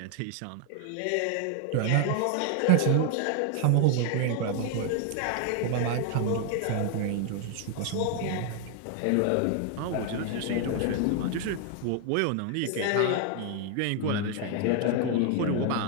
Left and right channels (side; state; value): both; different; correlation 0.00